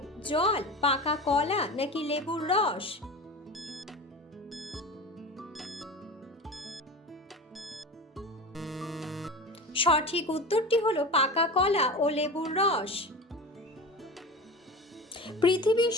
জল, পাকা কলা নাকি লেবুর রস। সঠিক উত্তরটি হলো পাকা কলা ও লেবুর রস। পৃথিবীর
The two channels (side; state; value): both; normal; correlation 0.31